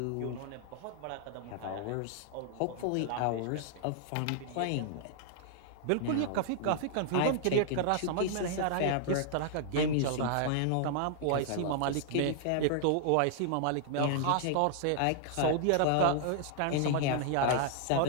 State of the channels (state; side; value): different; both; correlation -0.01